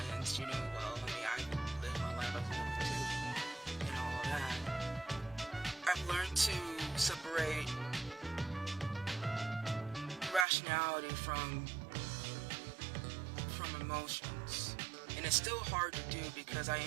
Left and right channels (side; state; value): left; drops out; at 10.5 s